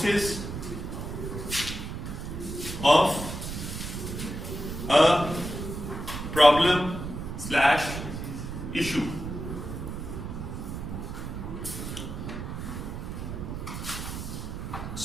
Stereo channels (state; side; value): noise; right; rumble, 6 dB below the sound